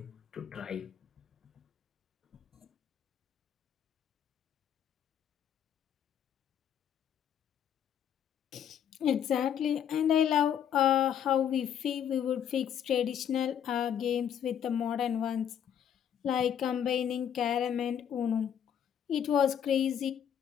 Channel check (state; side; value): quieter; right; 9.1 dB